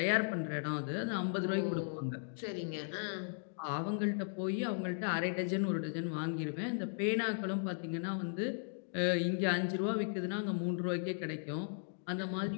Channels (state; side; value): silent; right; digital silence